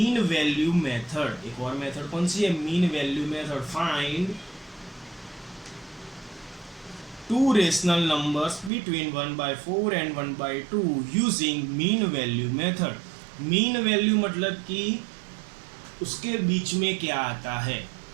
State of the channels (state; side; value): drops out; left; at 8.7 s